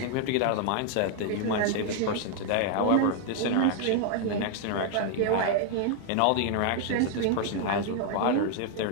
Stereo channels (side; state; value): both; different; correlation 0.00